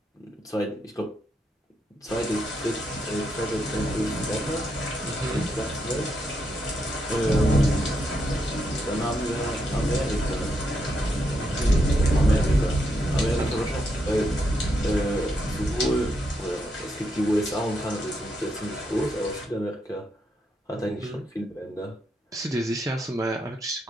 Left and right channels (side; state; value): both; normal; correlation 0.81